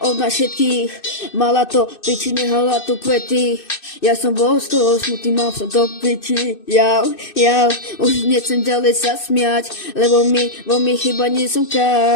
od nás všetkých, mala to piči, nehala tu kvety, ja som bol z toho smutný, mal som to piči, už nechcem ďalej sa smiať, lebo mi chyba nie som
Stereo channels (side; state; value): right; late; 2.6 ms